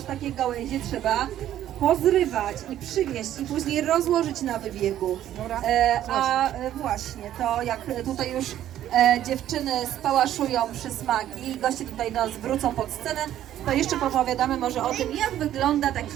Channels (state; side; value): quieter; left; 12.0 dB